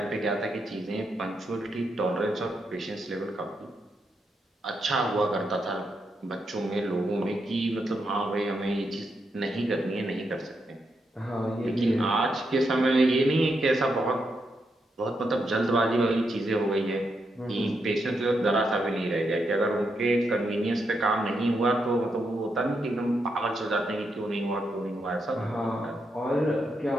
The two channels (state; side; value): normal; both; correlation 0.82